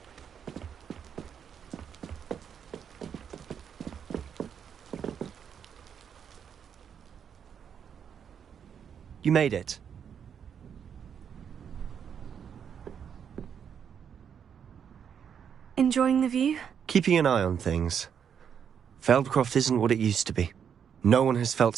You made it. Enjoying the view? Keeping an eye on things. Feldcroft isn't what it used to be. No one has felt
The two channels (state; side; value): quieter; left; 7.8 dB